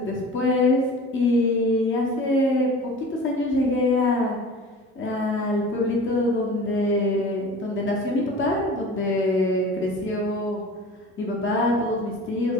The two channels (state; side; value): normal; both; correlation 0.39